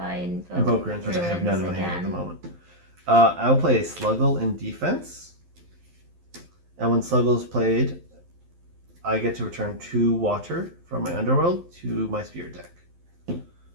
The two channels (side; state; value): left; late; 12 ms